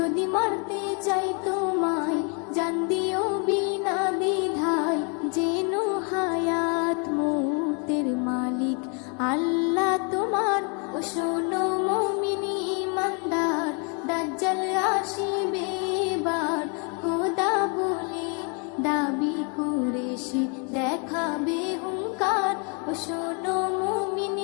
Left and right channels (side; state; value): right; quieter; 36.0 dB